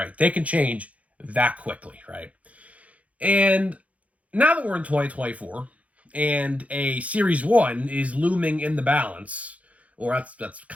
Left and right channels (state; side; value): late; left; 0.066 ms